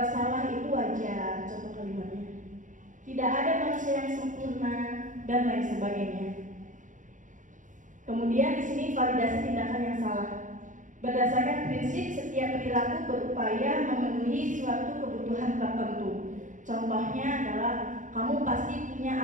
salah itu wajar, contoh kalimatnya. Tidak ada manusia yang sempurna dan lain sebagainya. Kemudian di sini validasi tindakan yang salah. Berdasarkan prinsip setiap perilaku berupaya memenuhi suatu kebutuhan tertentu. Contohnya adalah kamu pasti punya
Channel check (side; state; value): left; late; 0.37 ms